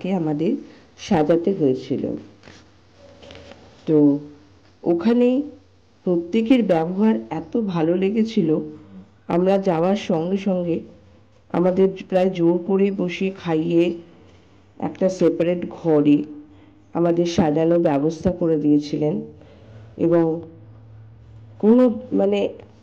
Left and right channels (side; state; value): both; identical; correlation 1.00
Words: আমাদের সাজাতে হয়েছিল। তো ওখানে প্রত্যেকের ব্যবহার এত ভালো লেগেছিল, আমরা যাওয়ার সঙ্গে সঙ্গে আমাদের প্রায় জোর করে বসিয়ে খাইয়ে একটা সেপারেট ঘরে আমাদের সাজানোর ব্যবস্থা করে দিয়েছিলেন। এবং কোনো